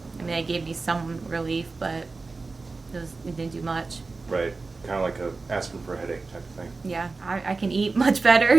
I mean, they gave me some relief, but it didn't do much. Right. Kind of like a aspirin for a headache type of thing. Yeah. I can eat much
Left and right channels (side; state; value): left; quieter; 3.8 dB